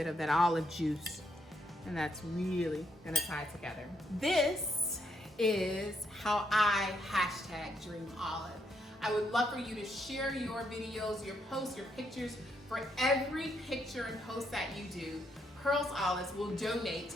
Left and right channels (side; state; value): both; normal; correlation 0.76